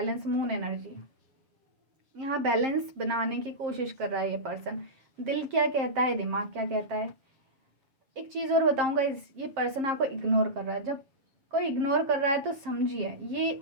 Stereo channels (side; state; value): left; late; 7.5 ms